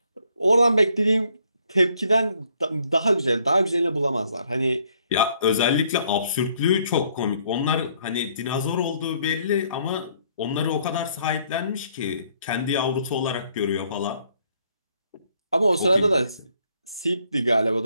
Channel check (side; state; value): both; inverted; correlation -0.67